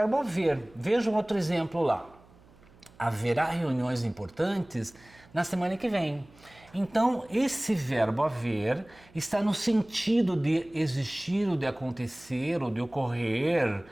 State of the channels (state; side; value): noise; right; hum, 27 dB below the sound